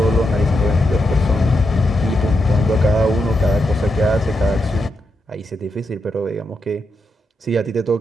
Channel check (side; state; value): both; normal; correlation 0.84